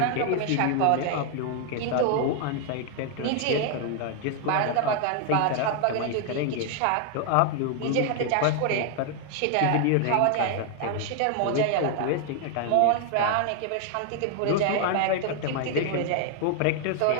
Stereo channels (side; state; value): both; different; correlation 0.00